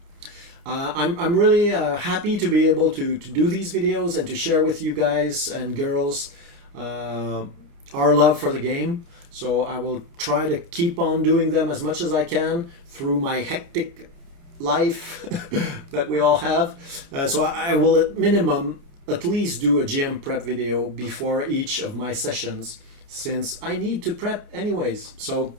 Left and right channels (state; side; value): late; left; 29 ms